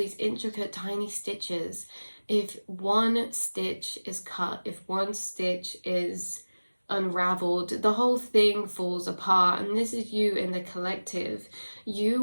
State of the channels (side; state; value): both; inverted; correlation -1.00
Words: intricate tiny stitches. If one stitch is cut, if one stitch is unraveled, the whole thing falls apart. And this is you in the collective.